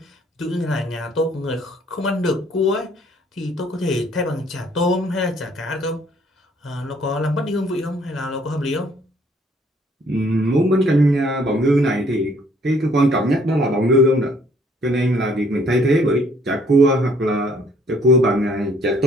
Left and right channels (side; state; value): both; normal; correlation 0.62